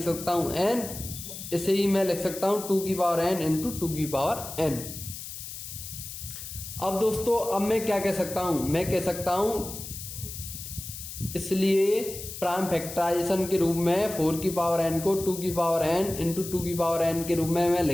सकता हूं n, इसे ही मैं लिख सकता हूं 2 की पावर n इंटू 2 की पावर n। अब दोस्तों अब मैं क्या कह सकता हूं, मैं कह सकता हूं इसलिए प्राइम फैक्टराइजेशन के रूप में 4 की पावर n को 2 की पावर n इंटू 2 की पावर n के रूप में मैं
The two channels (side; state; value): left; noise; hiss, 10 dB below the sound